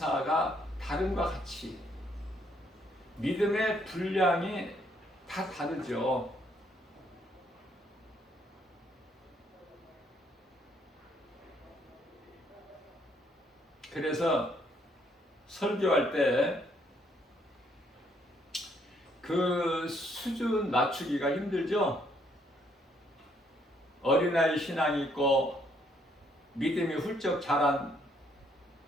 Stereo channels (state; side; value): normal; both; correlation 0.69